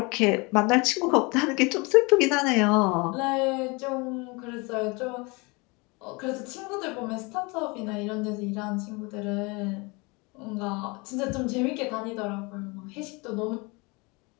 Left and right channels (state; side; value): quieter; right; 27.5 dB